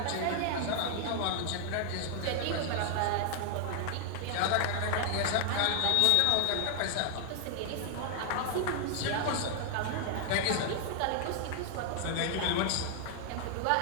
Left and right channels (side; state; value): both; different; correlation 0.00